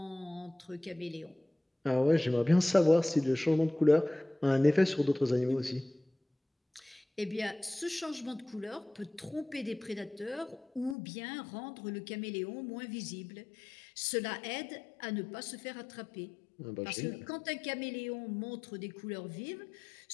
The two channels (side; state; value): right; drops out; at 11.0 s